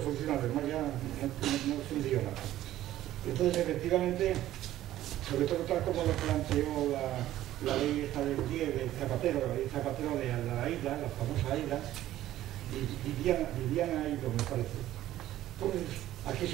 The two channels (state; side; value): quieter; left; 13.8 dB